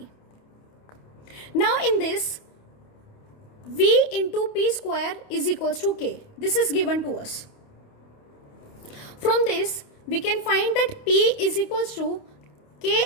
Now in this, V into P square is equals to K. This is given to us. From this, we can find that P is equals to K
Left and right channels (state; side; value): late; right; 28 ms